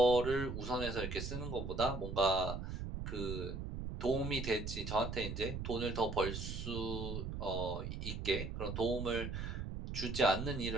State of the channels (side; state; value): right; noise; rumble, 5 dB below the sound